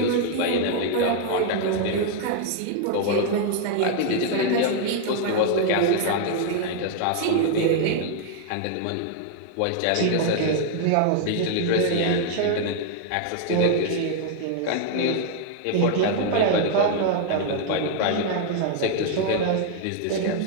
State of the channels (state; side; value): different; both; correlation 0.00